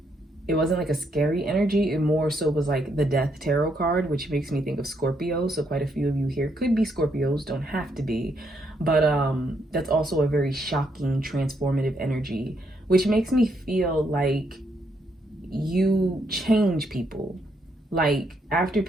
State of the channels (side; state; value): both; normal; correlation 0.76